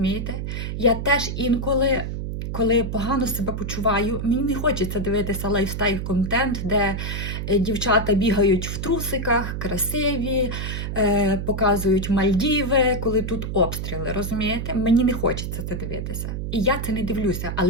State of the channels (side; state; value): right; noise; hum, 4 dB below the sound